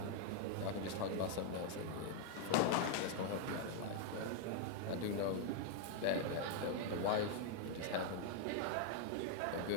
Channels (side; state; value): both; different; correlation 0.00